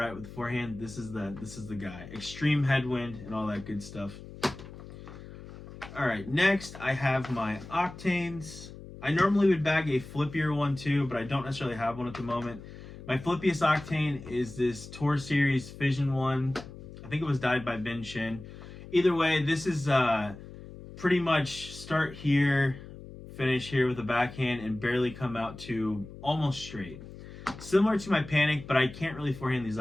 with the forehand, this is the guy. Extreme headwind and all that good stuff. All right, next I have my Octanes. I normally would bag a flippier one too, but I don't necessarily have one at the moment. My flippiest Octane is this Tour Series Fission one. I think it was dyed by Ben Shin. Either way, this is pretty much start here, finish here with a backhand, and barely come out to almost straight. Similar to my Panic, but I can't really forehand these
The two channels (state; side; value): noise; left; hum, 15 dB below the sound